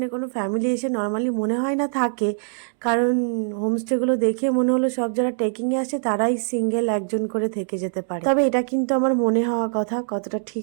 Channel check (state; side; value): silent; left; digital silence